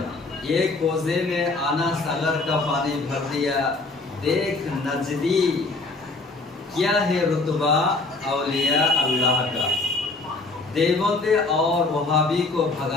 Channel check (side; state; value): right; quieter; 3.4 dB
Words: एक कोजे में आना सागर का पानी भर दिया, देख नजदी क्या है रुतबा औलिया अल्लाह का। देवबंदे और वहाबी को